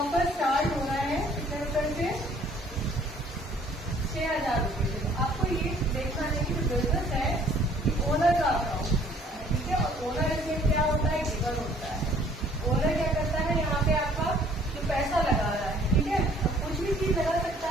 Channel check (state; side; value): normal; both; correlation 0.58